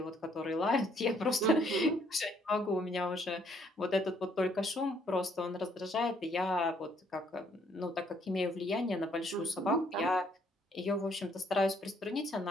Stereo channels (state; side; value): normal; both; correlation 0.66